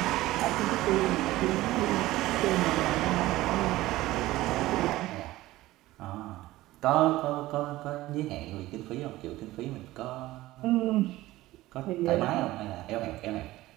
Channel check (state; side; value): quieter; left; 17.1 dB